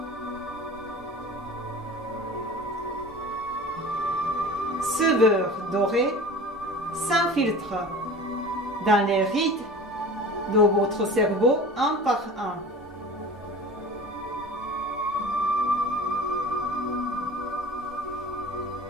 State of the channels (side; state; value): both; normal; correlation 0.39